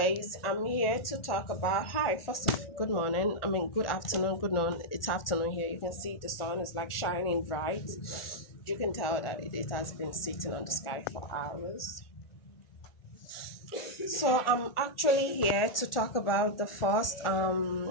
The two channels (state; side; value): late; right; 1.4 ms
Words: I'm here to talk about hi. First of good morning. I mean good afternoon, good noon. It's afternoon here. You can see the sun is like shining bright. You can tell that it has been sitting on the sky for hours. So I'm actually here to talk about the first